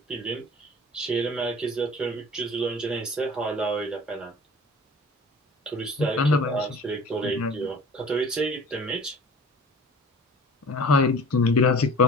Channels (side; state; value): both; normal; correlation 0.44